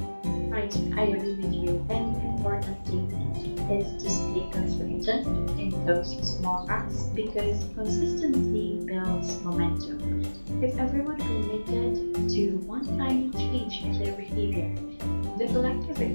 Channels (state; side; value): inverted; both; correlation -1.00